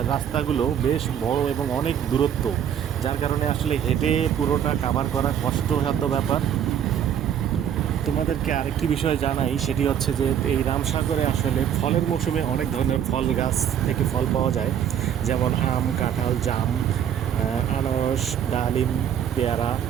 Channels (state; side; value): quieter; left; 9.3 dB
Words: রাস্তাগুলো বেশ বড় এবং অনেক দূরত্ব, যার কারণে আসলে হেঁটে পুরোটা কাভার করা কষ্টসাধ্য ব্যাপার। তোমাদেরকে আরেকটি বিষয় জানাই, সেটি হচ্ছে যে এই রামসাগরে আসলে ফলের মৌসুমে অনেক ধরনের ফল গাছ থেকে ফল পাওয়া যায়, যেমন আম, কাঁঠাল, জাম, আনারস, ডালিম, পেয়ারা,